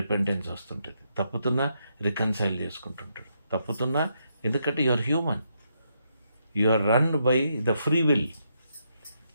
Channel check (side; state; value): both; inverted; correlation -0.78